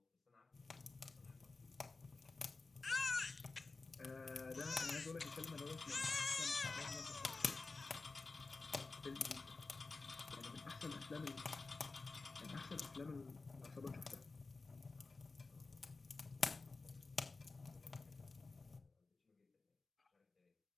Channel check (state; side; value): quieter; right; 3.8 dB